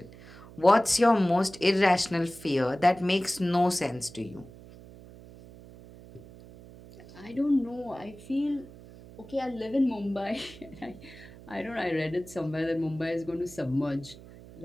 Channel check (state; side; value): noise; right; hum, 19 dB below the sound